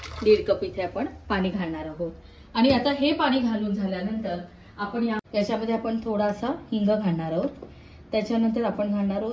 कप इथे आपण पाणी घालणार आहोत। आणि आता हे पाणी घालून झाल्यानंतर आपण याच्यामध्ये आपण थोडासा हिंग घालणार आहोत। त्याच्यानंतर आपण घालणार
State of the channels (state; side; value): identical; both; correlation 1.00